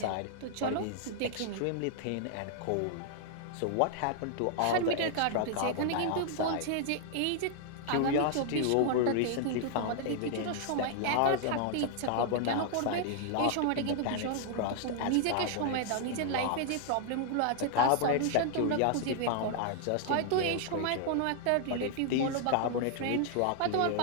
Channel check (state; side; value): different; both; correlation 0.00